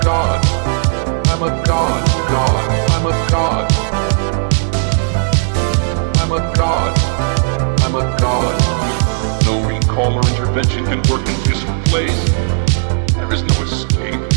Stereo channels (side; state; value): left; silent; digital silence